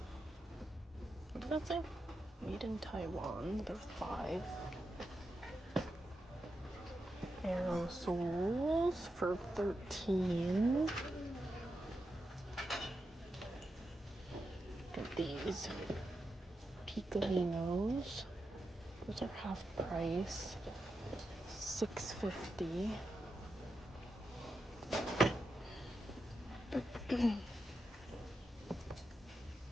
What did that say? Made in Taiwan. They're $5. Aerosols for $13. Get these Picolinos. Those are half price. $6.50. Some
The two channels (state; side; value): normal; both; correlation 0.87